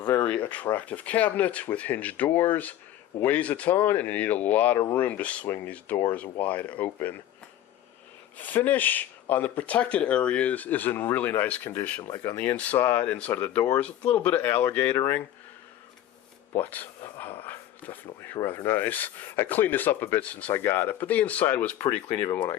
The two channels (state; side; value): quieter; right; 12.2 dB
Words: attractive cabinet with hinged doors, weighs a ton, and you need a lot of room to swing these doors wide open. Finish on the protected areas is in really nice condition, like on the inside of the doors, a little bit of alligatoring, but definitely rather nice. I cleaned this up a bit since I got it, but the inside was pretty clean even when